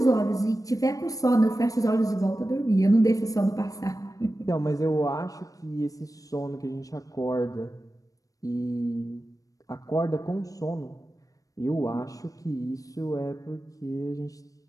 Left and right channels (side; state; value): right; late; 0.17 ms